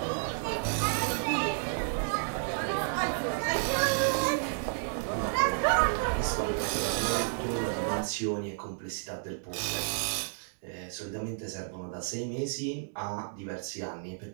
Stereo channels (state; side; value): silent; left; digital silence